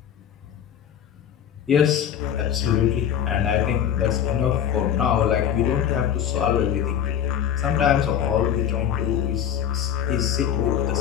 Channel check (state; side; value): quieter; right; 9.5 dB